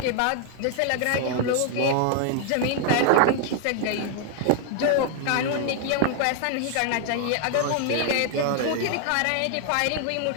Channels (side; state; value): both; different; correlation 0.00